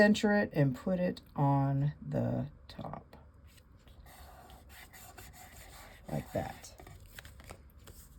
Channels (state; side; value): identical; both; correlation 1.00